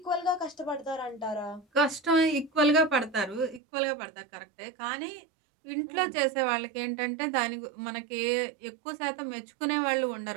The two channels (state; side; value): drops out; left; at 3.6 s